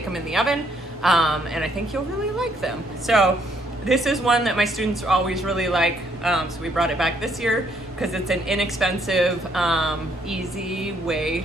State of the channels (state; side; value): normal; both; correlation 0.69